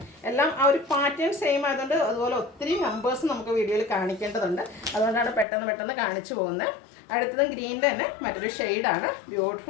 എല്ലാം ആ ഒരു പാറ്റേൺ സെയിം ആയതുകൊണ്ട് അതുപോലെ ഒത്തിരി നമ്പേഴ്സ് നമുക്ക് വീഡിയോയിൽ കാണിക്കേണ്ടതുണ്ട്. അതുകൊണ്ടാണ് പെട്ടെന്ന് കാണിച്ചു പോകുന്നത്. അടുത്തതും ഗ്രീനിൻ്റെ തന്നെ മറ്റൊരു ഷെയ്ഡാണ്.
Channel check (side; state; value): right; drops out; at 5.5 s